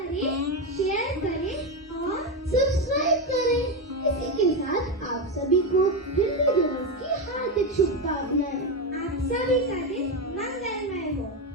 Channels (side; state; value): both; normal; correlation 0.11